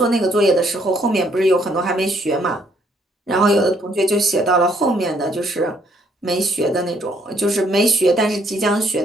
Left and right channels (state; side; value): normal; both; correlation 0.67